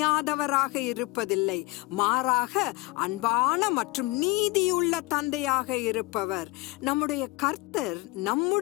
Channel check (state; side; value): quieter; right; 21.8 dB